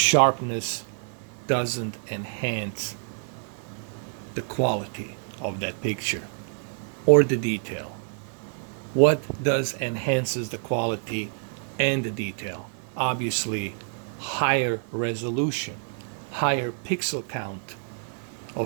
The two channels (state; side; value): silent; left; 60 dB below the other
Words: doesn't enhance the quality of that picture or the detail. What does enhances the quality and the detail? Obviously, higher resolution, higher pixel count